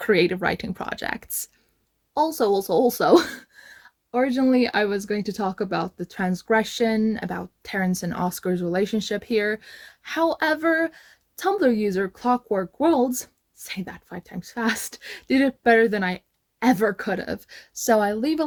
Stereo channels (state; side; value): identical; both; correlation 1.00